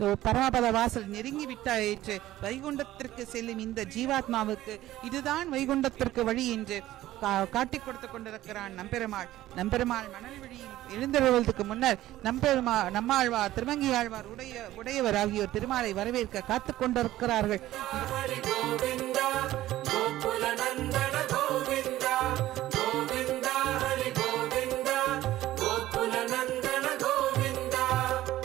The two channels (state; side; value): quieter; left; 14.9 dB